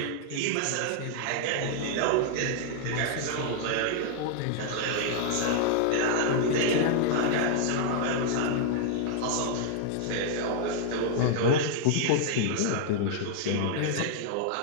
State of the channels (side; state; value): both; different; correlation 0.00